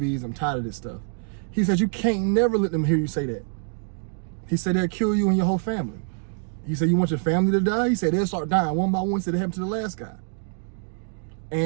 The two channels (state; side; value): silent; left; 59 dB below the other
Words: I'm tired of this stuff. He said, you can't never let them hear you say that. He said, they'll kill you and your whole family. He said, you want your family to die? He said, they'll start dying one by one. He said, it happened to the last guy.